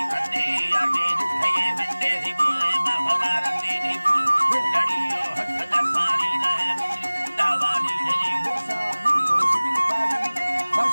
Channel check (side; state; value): both; inverted; correlation -1.00